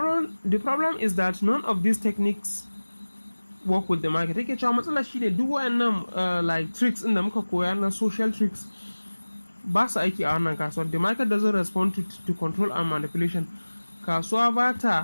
is that none of these techniques work with the market. Take cewa matsala shi ne duk wayannan tricks in da muka koya na social tricks ba su aiki a wannan kasuwar. The market doesn't respond to control and manipulation. Kasuwa ba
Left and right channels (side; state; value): both; inverted; correlation -1.00